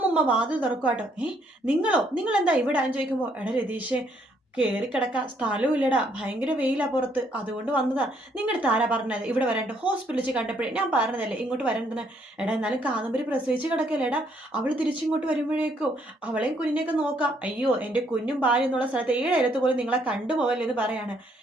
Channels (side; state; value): both; normal; correlation 0.69